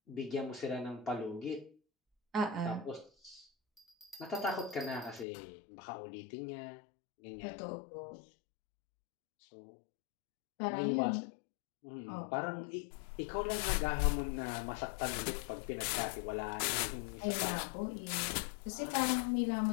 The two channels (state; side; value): drops out; right; at 5.2 s